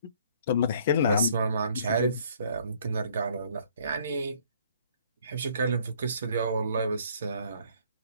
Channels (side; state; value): both; inverted; correlation -0.60